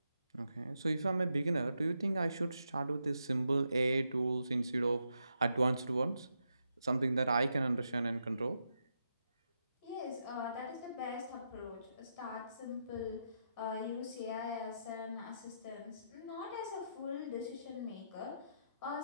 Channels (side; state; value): both; inverted; correlation -0.84